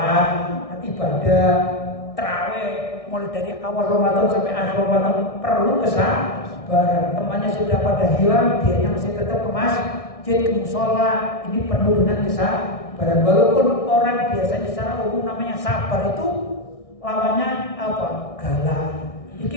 ibadah, tarawih, mulai dari awal Ramadan sampai akhir Ramadan perlu kesabaran. Temannya sudah pada hilang, dianya masih tetap ke masjid, ke musola. Ini penuh dengan kesabaran. Walaupun orang biasanya secara umum namanya sabar itu lawannya apa? Galak.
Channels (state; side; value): late; right; 1.6 ms